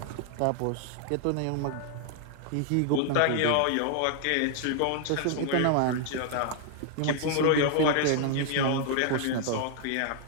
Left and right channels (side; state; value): both; different; correlation 0.00